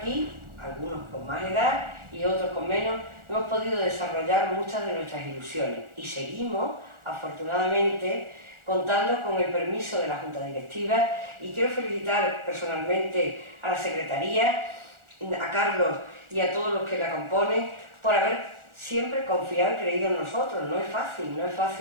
algunos con más edad y otros con menos, hemos podido desarrollar muchas de nuestras ilusiones y seguimos, afortunadamente, contando con el permiso de la Junta Directiva, y quiero felicitar personalmente a la Secretaría, a Carlos y a todos los que la componen por haber siempre confiado y creído en nosotros. No es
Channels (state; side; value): late; left; 1.4 ms